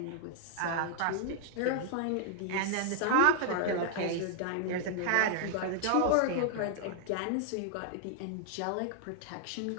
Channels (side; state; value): both; different; correlation 0.00